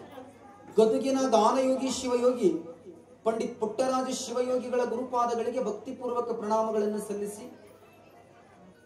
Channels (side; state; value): both; identical; correlation 1.00